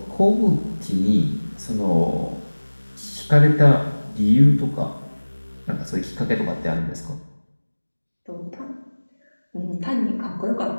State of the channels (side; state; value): both; inverted; correlation -1.00